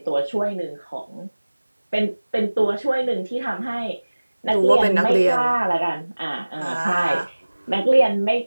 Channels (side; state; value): both; inverted; correlation -1.00